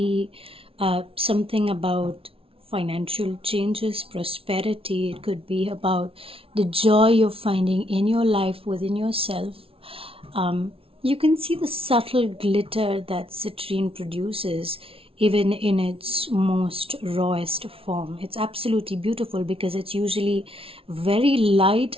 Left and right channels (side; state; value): left; late; 0.26 ms